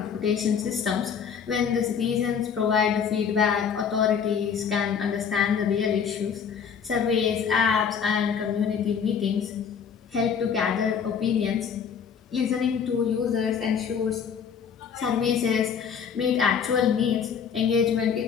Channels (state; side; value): quieter; right; 7.1 dB